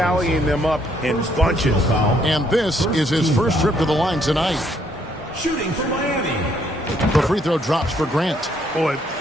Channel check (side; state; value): both; normal; correlation 0.69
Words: them up in bunches. And this is his first trip to the line tonight. Shooting for Miami. The free throw drops for Grant. Boy,